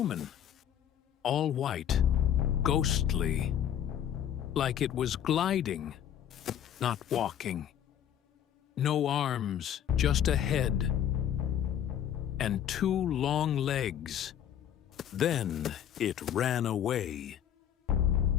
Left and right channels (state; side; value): quieter; right; 9.9 dB